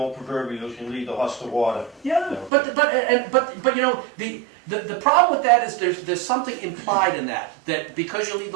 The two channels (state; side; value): drops out; left; at 2.5 s